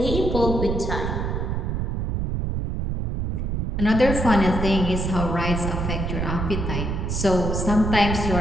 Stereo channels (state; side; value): noise; right; rumble, 1 dB below the sound